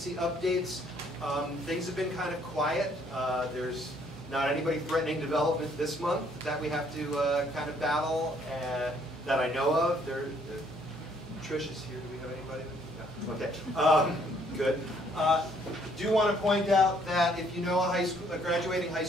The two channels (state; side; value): normal; both; correlation 0.65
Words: updates, things have been kind of quiet. There's not anybody threatening development this month that we have to kind of battle that I know of. Trish is here. Do we have anybody? No. Okay. Good. Do want to point out that if you know a graduating high